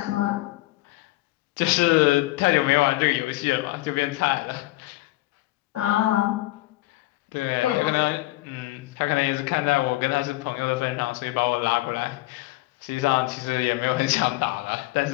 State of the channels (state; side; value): quieter; right; 19.2 dB